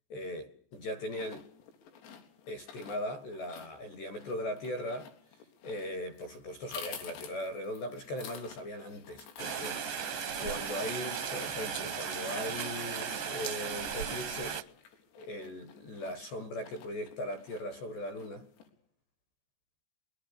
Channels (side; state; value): right; late; 14 ms